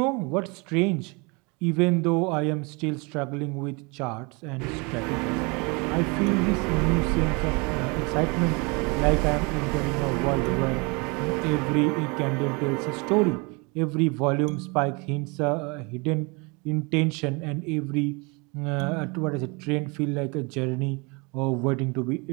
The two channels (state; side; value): quieter; left; 29.2 dB